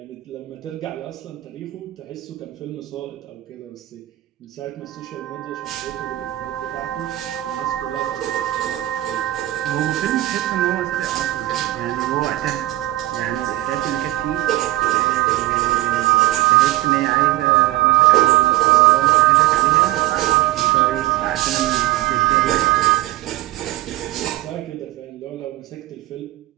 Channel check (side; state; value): left; quieter; 16.2 dB